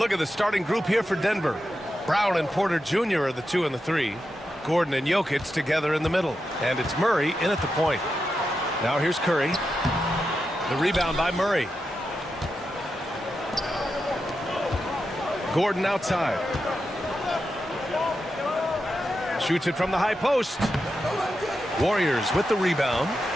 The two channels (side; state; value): both; normal; correlation 0.88